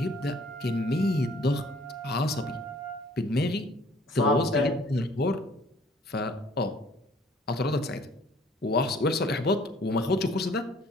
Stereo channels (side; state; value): both; normal; correlation 0.57